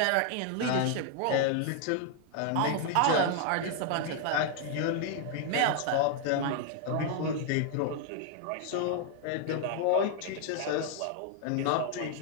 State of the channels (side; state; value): both; different; correlation 0.00